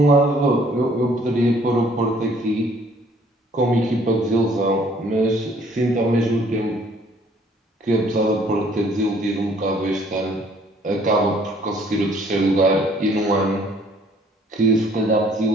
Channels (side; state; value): both; normal; correlation 0.60